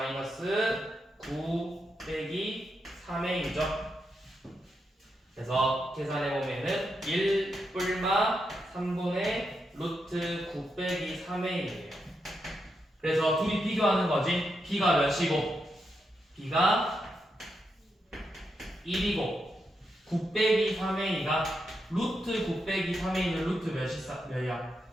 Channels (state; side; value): normal; both; correlation 0.84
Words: 9 빼기 3a이죠. 그래서 계산해보면은 1 뿔마 3분의 루트 9 빼기 3a예요. 그래서 둘이 비교하는 거지. b가 몇이고 b가 1이고 9 빼기 3a가 루트 9 빼기 3a는 루트 몇이야?